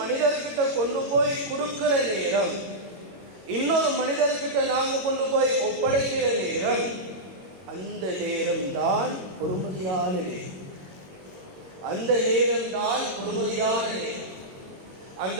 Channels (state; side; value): late; left; 21 ms